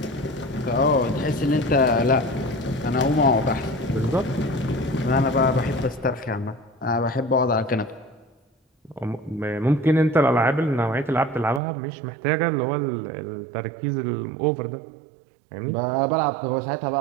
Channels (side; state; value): left; drops out; at 11.6 s